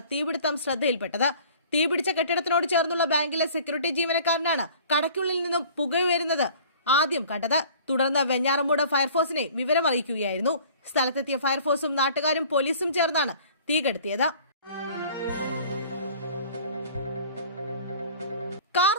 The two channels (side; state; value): both; inverted; correlation -0.49